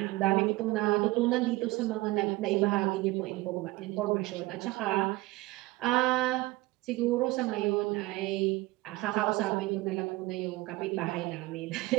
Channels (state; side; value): quieter; left; 20.2 dB